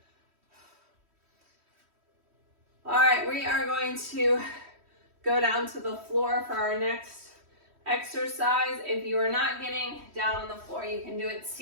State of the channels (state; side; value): late; left; 3.1 ms